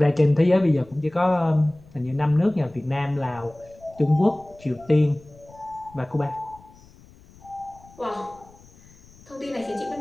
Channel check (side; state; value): left; noise; rumble, 25 dB below the sound